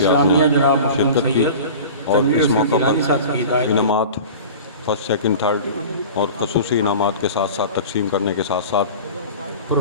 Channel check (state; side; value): inverted; both; correlation -0.37